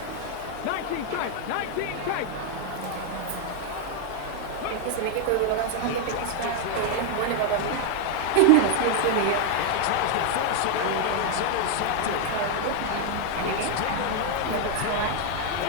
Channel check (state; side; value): different; both; correlation 0.00